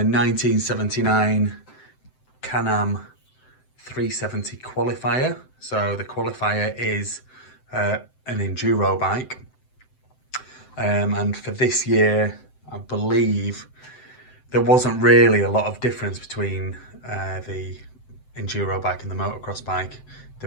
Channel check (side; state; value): right; late; 7.8 ms